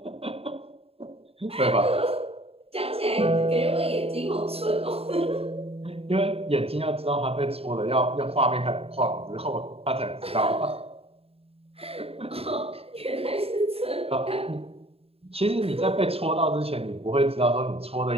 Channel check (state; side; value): late; left; 0.28 ms